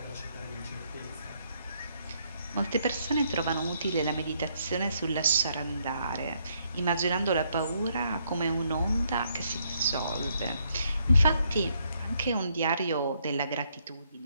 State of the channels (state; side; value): inverted; both; correlation -0.72